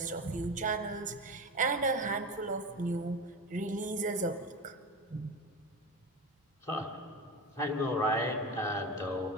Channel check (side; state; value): both; normal; correlation 0.24